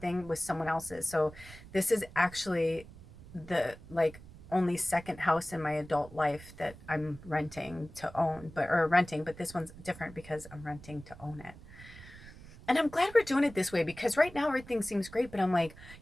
with someone else's. So this is actually the like only second house in my adult life that I'm renting to own, but this one's different because I'm renting to own it. And I'm glad we're doing it this way, because right now everything seems great, but I'm like,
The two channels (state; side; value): noise; right; rumble, 18 dB below the sound